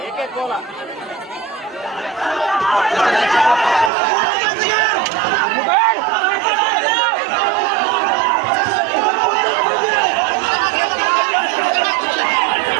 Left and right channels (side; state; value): left; drops out; at 3.9 s